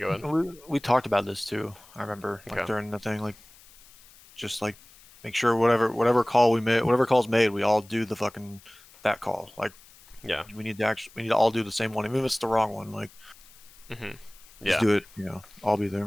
go ahead. We talked about this too. I remember like Okay. during the thing, like just like make sure whatever call we made, whatever call's made, we all do the fucking that call. Like Yeah. we need to all do the same one, even if it's the wrong one. Like Yeah. just do it. You know, I'll be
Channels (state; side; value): noise; left; hiss, 24 dB below the sound